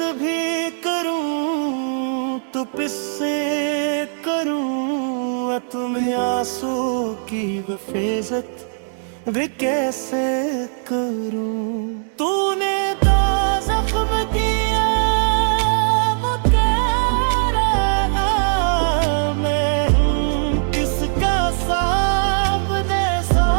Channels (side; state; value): left; silent; 66 dB below the other